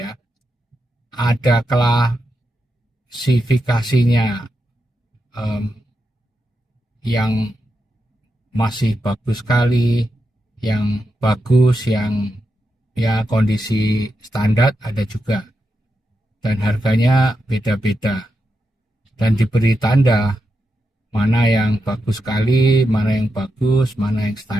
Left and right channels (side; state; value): both; normal; correlation 0.86